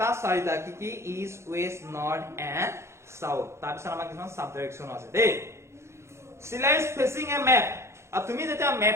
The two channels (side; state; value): left; late; 0.13 ms